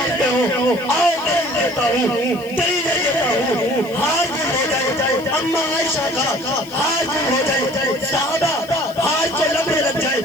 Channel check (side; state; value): left; noise; hiss, 22 dB below the sound